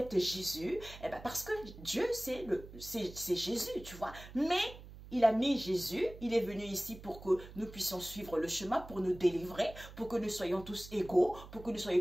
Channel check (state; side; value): noise; right; hum, 16 dB below the sound